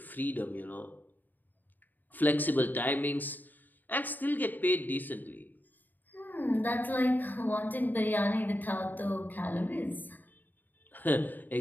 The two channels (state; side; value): late; right; 0.088 ms